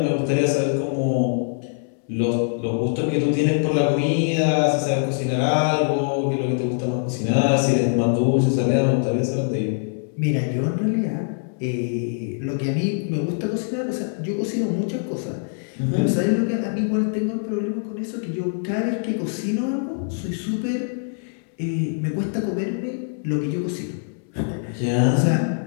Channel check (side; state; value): right; silent; 61 dB below the other